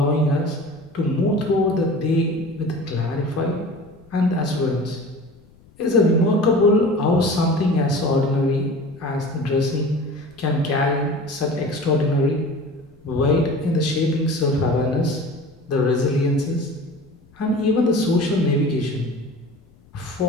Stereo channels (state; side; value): noise; left; rumble, 28 dB below the sound